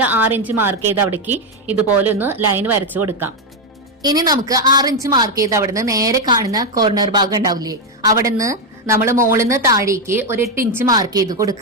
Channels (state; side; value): normal; both; correlation 0.05